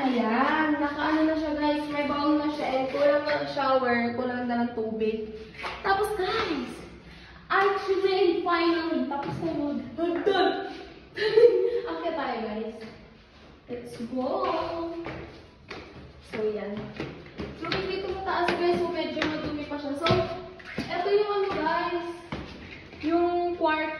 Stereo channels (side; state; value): both; identical; correlation 1.00